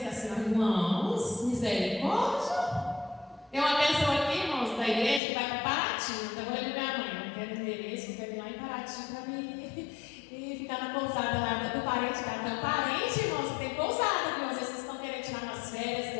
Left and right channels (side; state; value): right; drops out; at 5.2 s